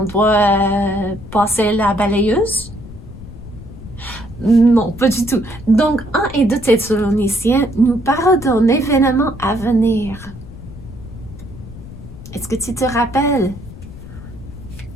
doit passer la balayeuse? Non, pas du tout. Donc, 1 et 2 Thessaloniciens nous parlent d'un événement à venir. Est-ce que tu te rappelles?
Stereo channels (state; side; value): noise; left; rumble, 15 dB below the sound